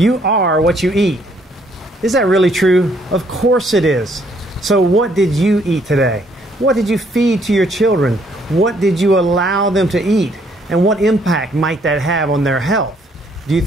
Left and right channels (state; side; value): normal; both; correlation 0.67